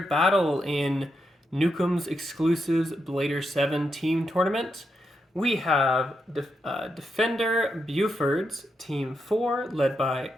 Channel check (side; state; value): both; normal; correlation 0.83